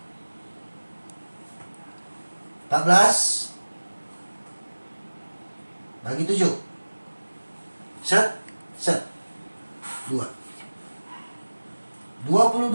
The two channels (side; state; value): both; inverted; correlation -1.00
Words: 14 bagi 7. Set 2.